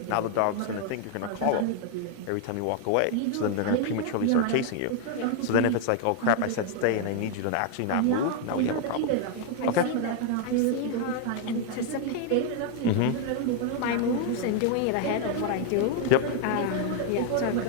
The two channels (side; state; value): both; different; correlation 0.00